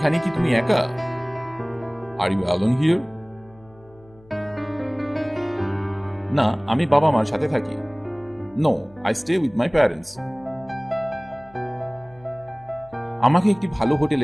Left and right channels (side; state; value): left; noise; hum, 26 dB below the sound